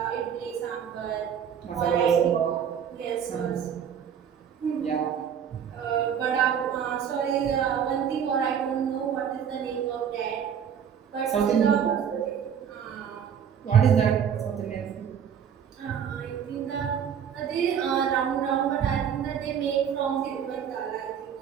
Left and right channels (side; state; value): left; quieter; 8.2 dB